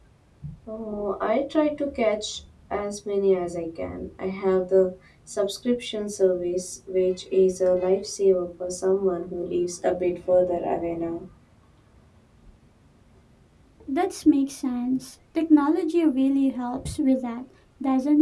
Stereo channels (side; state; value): both; identical; correlation 1.00